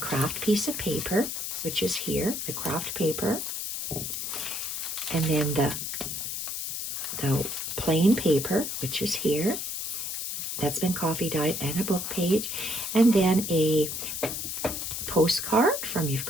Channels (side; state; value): left; noise; hiss, 4 dB below the sound